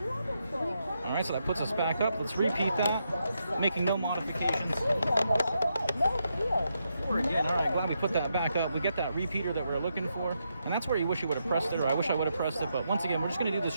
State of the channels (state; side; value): inverted; both; correlation -0.82